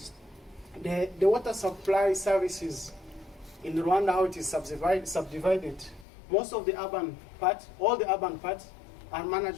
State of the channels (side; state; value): right; drops out; at 6.1 s